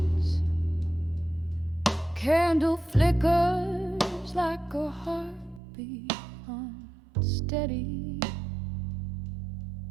candle flickers like a heartbeat unsteady.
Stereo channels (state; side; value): drops out; left; at 5.6 s